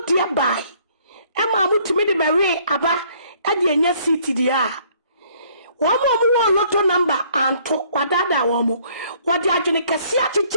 dear by. Emma mo to me the Mary Abba at the yes city dear. One more lotto number and to wadada womo. What the agenica siati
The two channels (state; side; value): inverted; both; correlation -0.61